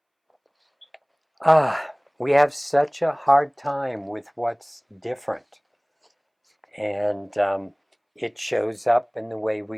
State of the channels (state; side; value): identical; both; correlation 1.00